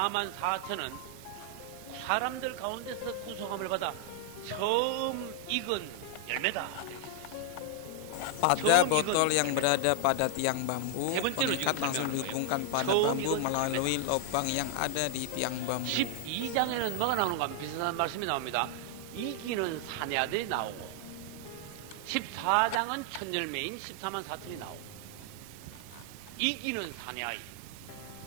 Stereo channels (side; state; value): both; different; correlation 0.00